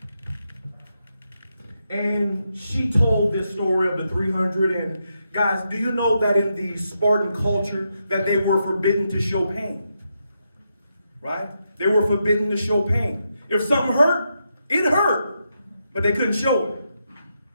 And she told this story of the 300. And guys, do you know that in the Spartan culture that they were forbidden to show pain? Right? They were forbidden to show pain. If something hurt, it hurt. But they couldn't show it.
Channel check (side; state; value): both; inverted; correlation -0.83